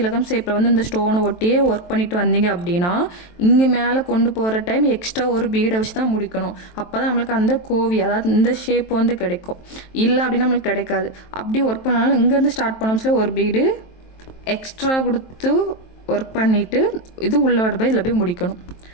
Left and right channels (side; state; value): right; late; 23 ms